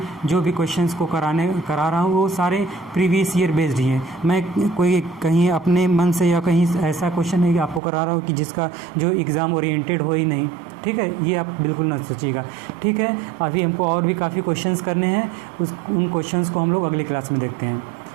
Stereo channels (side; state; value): left; drops out; at 7.8 s